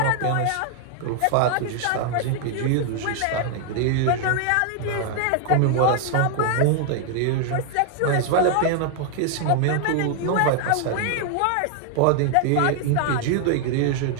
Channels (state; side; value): different; both; correlation 0.00